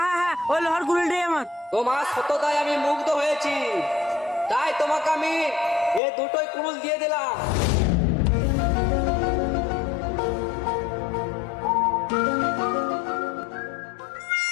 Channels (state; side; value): drops out; right; at 6.0 s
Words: হ্যাঁ হ্যাঁ, ওই লোহার কুড়ুলটাই আমার। তোমার সততায় আমি মুগ্ধ হয়েছি, তাই তোমাকে আমি এই দুটোই কুড়ুল দিয়ে দিলাম।